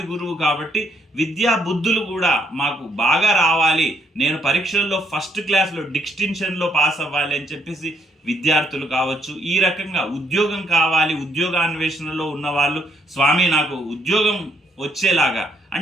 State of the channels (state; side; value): normal; both; correlation 0.72